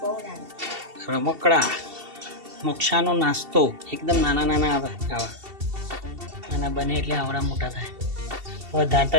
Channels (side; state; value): left; late; 2.7 ms